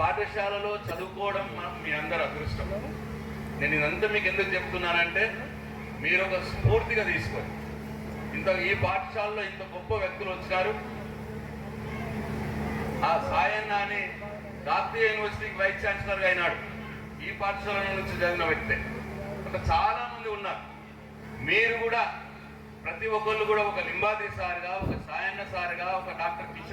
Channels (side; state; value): both; identical; correlation 1.00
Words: చదువుకోవడం మీ అందరూ అదృష్టం. నేను ఇదంతా మీకు ఎందుకు చెప్తున్నానంటే మీరు ఒక స్ఫూర్తిగా తీసుకోండి. ఈ పాఠశాలలో ఇంత గొప్ప వ్యక్తులు వచ్చినారు. ఆ సాయన్న అని జాతీయ యూనివర్సిటీకి వైస్ ఛాన్సలర్గా అయినాడు, ఈ పాఠశాల నుంచి చదివిన వ్యక్తే. అట్లా చాలా మంది ఉన్నారు. మీరు కూడా ప్రతి ఒక్కళ్ళు కూడా ఒక లింబాద్రి సార్గా, ఒక సాయన్న సార్గా, ఒక డాక్టర్